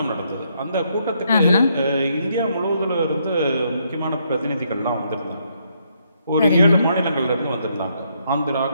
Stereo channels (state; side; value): inverted; both; correlation -0.74